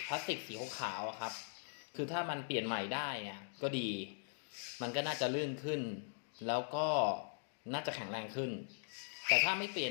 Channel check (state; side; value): silent; right; digital silence